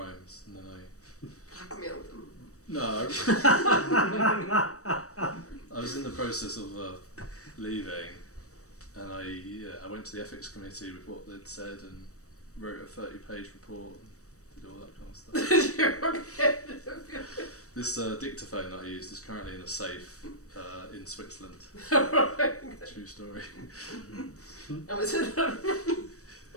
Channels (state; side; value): late; right; 0.65 ms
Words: and then Blackmailed them. No. I was in the process of leaving, and I went to the ethics committee with what they'd said and wrote a 30-page report and did all that kind of stuff. You're okay. This dictaphone that I used is currently in a safe in Switzerland. True story. And was it